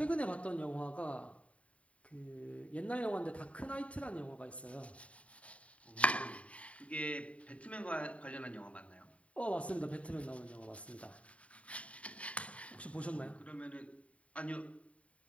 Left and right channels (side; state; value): right; late; 0.065 ms